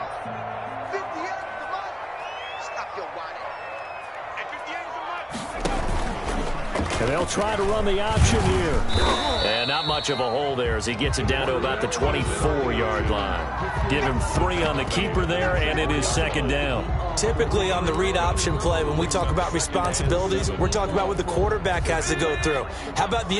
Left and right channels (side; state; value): both; identical; correlation 1.00